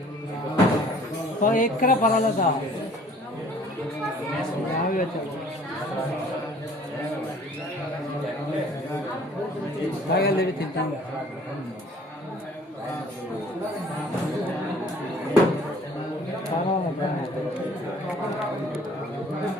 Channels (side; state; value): both; normal; correlation 0.53